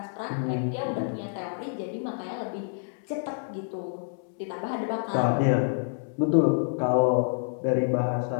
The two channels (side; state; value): right; silent; 59 dB below the other